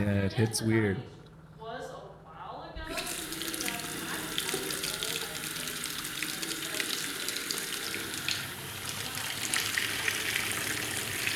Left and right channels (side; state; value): both; identical; correlation 1.00